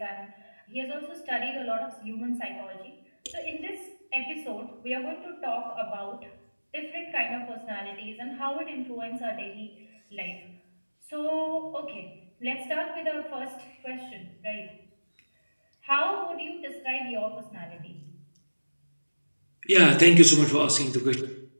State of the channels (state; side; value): inverted; both; correlation -1.00